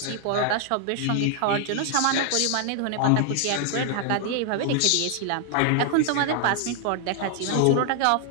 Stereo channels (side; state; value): both; different; correlation 0.00